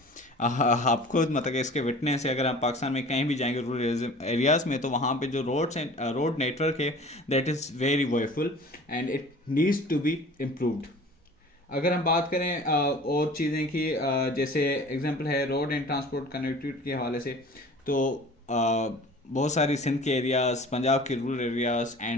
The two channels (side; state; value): both; normal; correlation 0.44